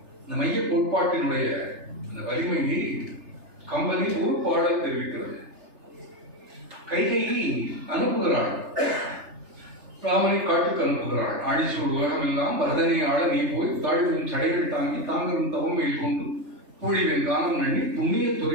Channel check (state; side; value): late; left; 3.3 ms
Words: இந்த மைய கோட்பாட்டினுடைய அந்த வலிமையை கம்பனின் ஒரு பாடல் தெரிவிக்கிறது. கைகையை அனுப்புகிறாள், ராமனை காட்டுக்கு அனுப்புகிறாள். ஆழிசூழ் உலகம் எல்லாம் பரதனை ஆள நீ போய் தாழ்வின் சடைகள் தாங்கி தாங்கரும் தவமையில் கொண்டு பூழிவின் காலம் நண்ணி புண்ணிய